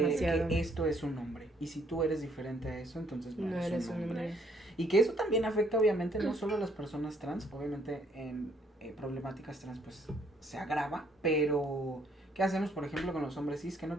que esto es un hombre. Y si tú eres diferente a eso, entonces no, No eres un hombre. Y que eso también afecta obviamente no solo a las personas trans, obviamente en problemáticas trans pues se agrava, pero ¿qué hacemos por ejemplo con los hombres cis que no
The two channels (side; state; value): both; normal; correlation 0.67